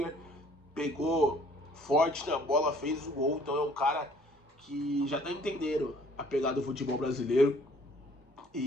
pegou forte na bola, fez o gol. Então é um cara que já tá entendendo a pegada do futebol brasileiro.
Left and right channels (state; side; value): normal; both; correlation 0.57